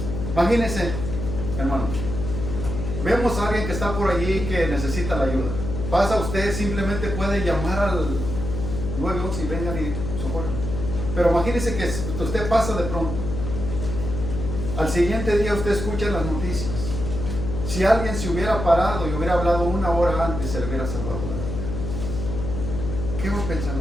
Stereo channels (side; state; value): left; noise; hum, 5 dB below the sound